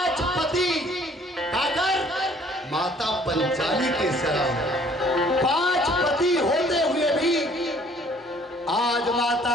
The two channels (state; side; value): normal; both; correlation 0.57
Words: पति आकर माता पंचाली के शरण। 5 पति होते हुए भी आज